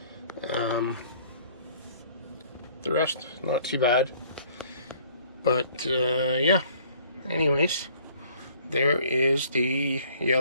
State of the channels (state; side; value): inverted; both; correlation -0.57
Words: The rest, not too bad. But, yeah. Anyways, there is the